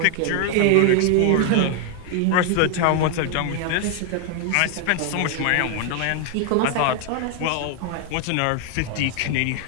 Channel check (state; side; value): different; both; correlation 0.00